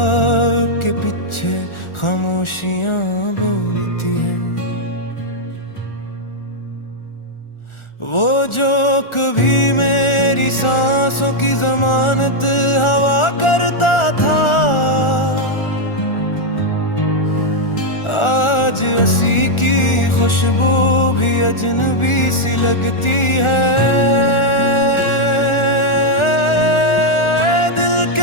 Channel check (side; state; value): right; late; 1.4 ms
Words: के पीछे खामोशियाँ बोलती हैं। वो जो कभी मेरी सांसों की जमानत हवा करता था, आज हंसी की खुशबू भी अजनबी सी लगती है। दिल